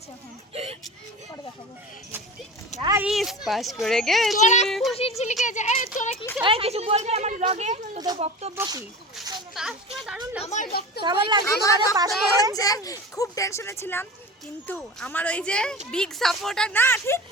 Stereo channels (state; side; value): normal; both; correlation 0.33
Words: এখন পরে দেখাবো। গাইস পাস করে গেছি। তোরা খুশি ছিলি কে? তোরা কি এই কিছু বলবি আমার ব্লগে? তোদের বক্তব্য কি? পাস করে দারুণ আমার বক্তব্য। কেমন লাগছে আমার আমাদের পাস বক্তব্য করে? হচ্ছে খুব টেনশনে ছিলাম কিন্তু আমার ওই যে বিগ সাপোর্টার না ঠিক